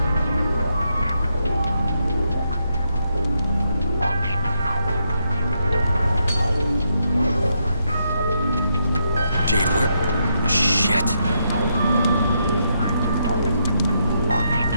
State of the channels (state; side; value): inverted; both; correlation -0.79